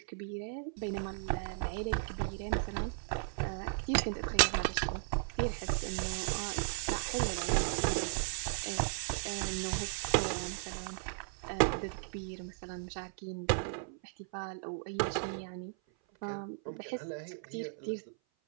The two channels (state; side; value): silent; left; 54 dB below the other